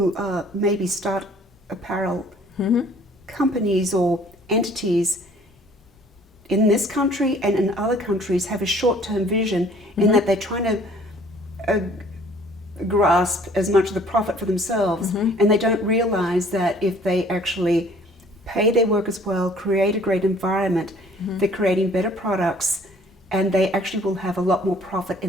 maybe start apparel companies or entities in this country and in other countries have a short-term vision in that they're trying to grasp as much of the profit for themselves, and they don't realize that if they actually pay their workers well, create a great environment, they're creating better products, and they actually will have a lot more profit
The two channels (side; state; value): both; normal; correlation 0.55